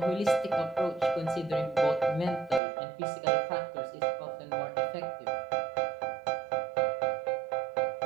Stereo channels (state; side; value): drops out; left; at 2.6 s